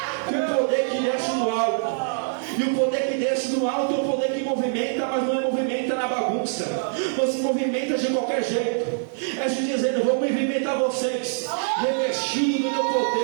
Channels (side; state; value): left; silent; 56 dB below the other